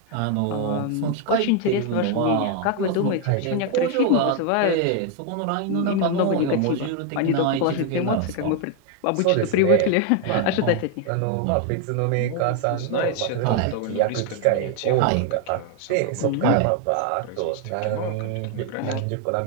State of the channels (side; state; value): both; different; correlation 0.01